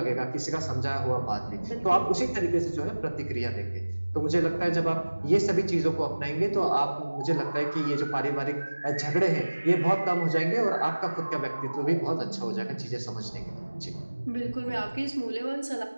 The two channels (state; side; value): inverted; both; correlation -1.00